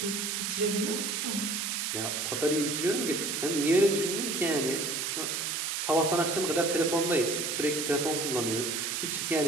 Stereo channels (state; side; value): noise; right; hiss, 1 dB below the sound